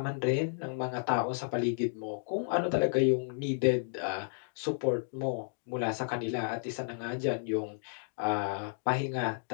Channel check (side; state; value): right; silent; digital silence